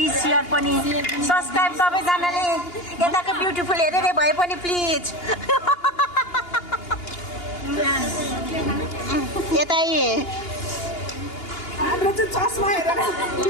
सेयर पनि सब्सक्राइब सबैजनाले यताको ब्युटिफुल हेरेर भए पनि प्लिज यता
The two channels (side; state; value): right; late; 2.8 ms